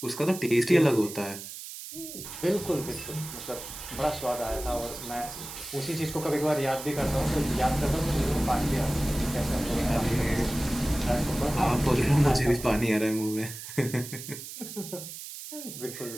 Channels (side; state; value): right; noise; hiss, 11 dB below the sound